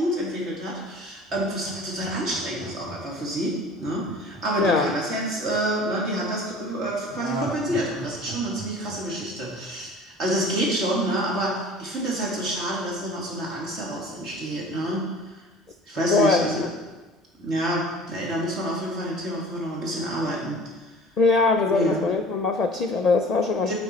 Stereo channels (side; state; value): both; normal; correlation 0.44